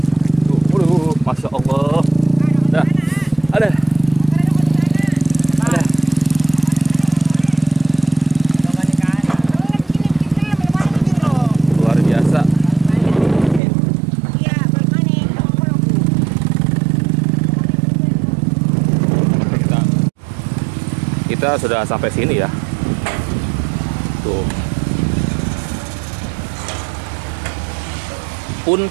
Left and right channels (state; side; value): drops out; left; at 13.6 s